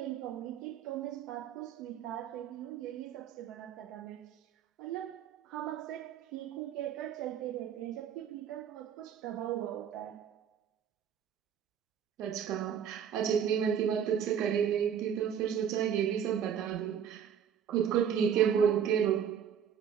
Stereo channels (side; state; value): left; quieter; 8.5 dB